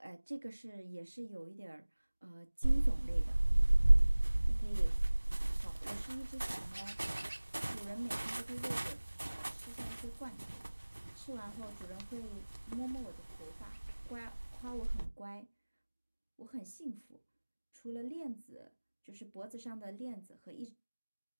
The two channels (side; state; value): both; inverted; correlation -1.00